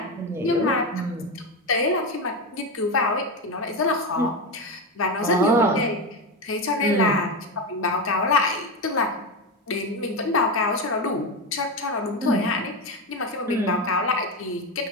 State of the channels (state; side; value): normal; both; correlation 0.14